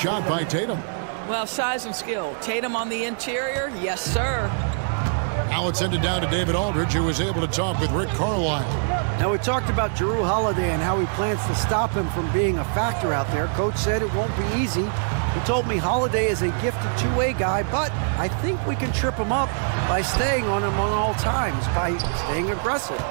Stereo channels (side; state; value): left; silent; 60 dB below the other